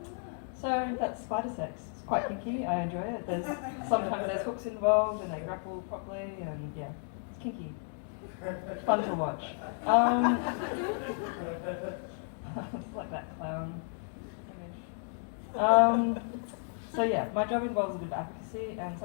So that's spider sex. It's quite kinky, I enjoy it. Sometimes there's hooks involved and they grapple properly and yeah, it's kinky. Fun to watch. It's like that clown image. So yeah, my job involves a bit of advocacy, and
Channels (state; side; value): silent; right; 56 dB below the other